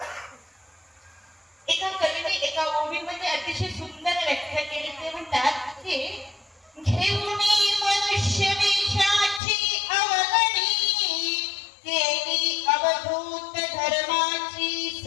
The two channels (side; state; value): right; drops out; at 9.4 s